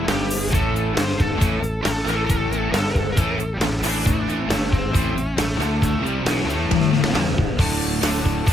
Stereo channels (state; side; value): normal; both; correlation 0.81